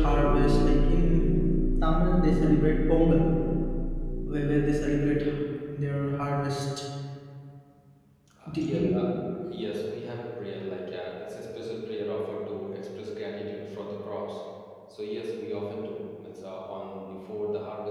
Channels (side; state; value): both; identical; correlation 1.00